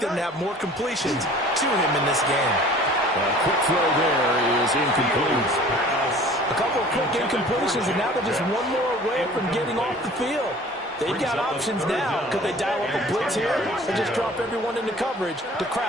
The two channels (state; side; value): normal; both; correlation 0.47